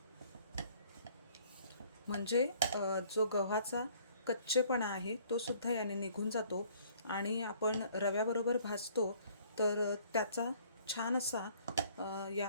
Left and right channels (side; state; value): both; inverted; correlation -0.58